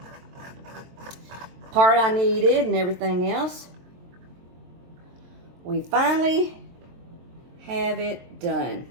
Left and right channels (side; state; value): left; late; 23 ms